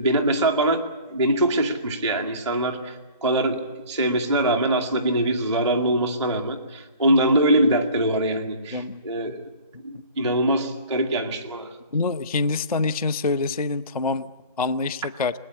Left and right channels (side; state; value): both; inverted; correlation -0.45